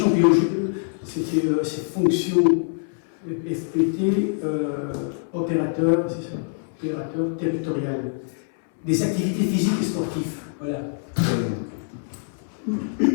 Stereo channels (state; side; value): silent; right; 62 dB below the other